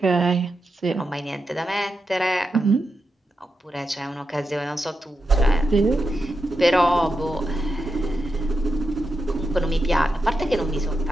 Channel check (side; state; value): both; normal; correlation 0.87